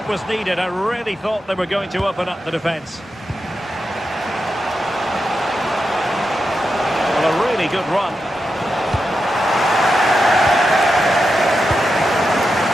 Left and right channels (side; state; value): both; normal; correlation 0.88